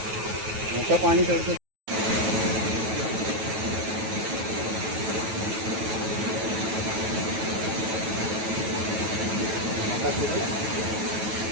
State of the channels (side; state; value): left; late; 9.3 ms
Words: मोठं पाणी चढतं